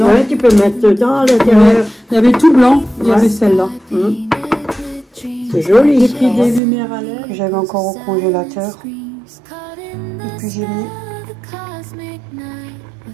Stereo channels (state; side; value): drops out; left; at 6.6 s